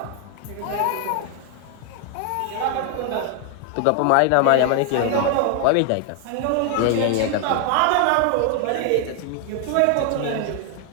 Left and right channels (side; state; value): both; different; correlation 0.00